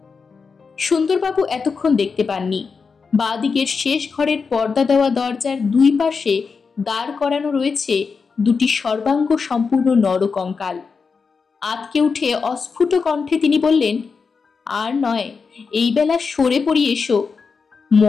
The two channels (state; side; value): quieter; right; 5.1 dB